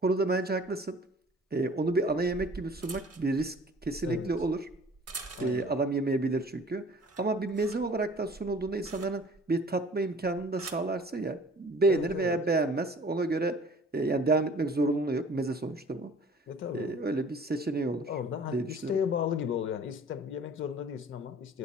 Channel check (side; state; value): both; normal; correlation 0.49